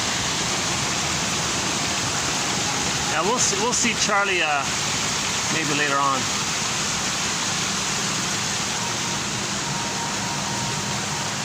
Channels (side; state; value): both; identical; correlation 1.00